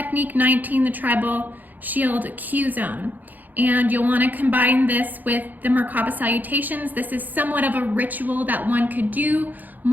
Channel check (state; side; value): late; left; 0.084 ms